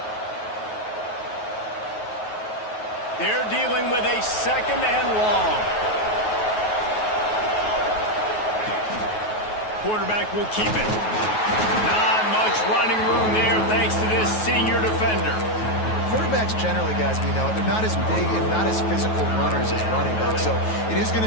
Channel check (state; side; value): late; right; 9.3 ms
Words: They're dealing with a 2nd and long. Quarterback will keep it. Not much running room there thanks to this senior defender. Quarterbacks generally, guys, we know, they're not as big and not as physical runners as running backs, so it is going